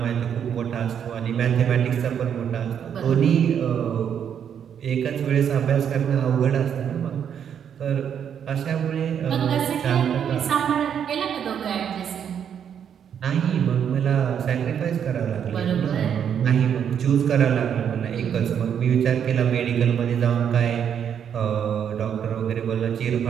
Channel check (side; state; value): left; quieter; 8.4 dB